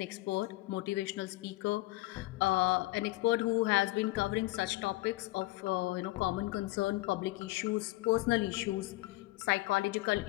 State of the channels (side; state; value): right; quieter; 20.0 dB